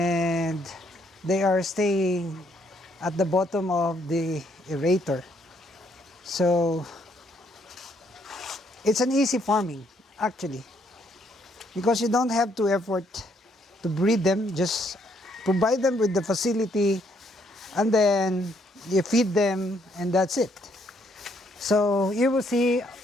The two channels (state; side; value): normal; both; correlation 0.70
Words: they are staying at the bottom of the aerator. So it's an easy farming actually, because you don't have to effort to breed them. Just provide them with the facility, and then you feed them, and that's it. So you will see